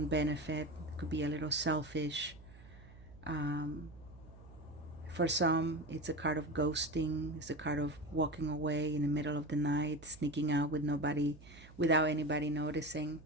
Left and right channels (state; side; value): noise; right; hum, 20 dB below the sound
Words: benefit. It could be a little selfish. For some, it's a card of ghosting. It's a card of walking away in the middle of the night, sneaking out without anybody noticing.